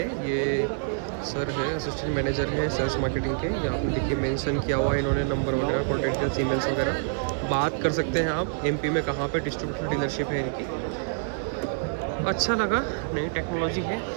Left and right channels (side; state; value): left; silent; digital silence